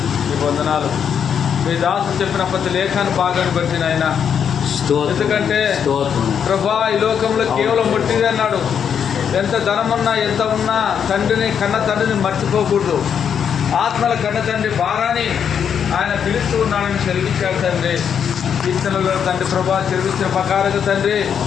మీ వందనాలు. మీ దాసు చెప్పిన ప్రతి లేఖాన్ని భాగాన్ని బట్టి నాయన. ఎందుకంటే ప్రభా ఈ లోకంలో కేవలం ముట్టిదే అన్నాడు. ఎంత ధనమున్నా ఎంత ఉన్నా కన్న తండ్రిని మర్చిపోకూడదు. ఆత్మల కన్న తండ్రి భారాన్ని ఆయన పిలుస్తూ ఉన్నాడని సెలవిచ్చాడు తండ్రి. కీర్తనలో తండ్రి ప్రభా సెలవిచ్చిన ప్రకారంగా తండ్రి,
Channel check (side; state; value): right; quieter; 7.8 dB